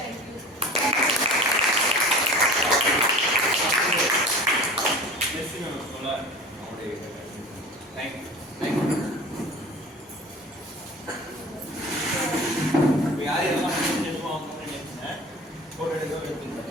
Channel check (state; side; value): normal; both; correlation 0.39